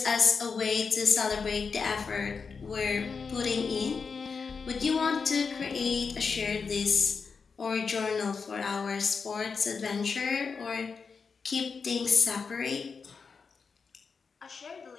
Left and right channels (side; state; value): right; quieter; 5.3 dB